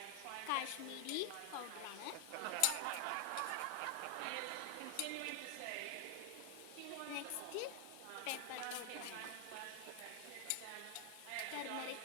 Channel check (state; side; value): different; both; correlation 0.00